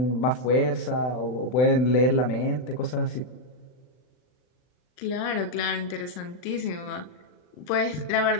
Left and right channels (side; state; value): right; late; 39 ms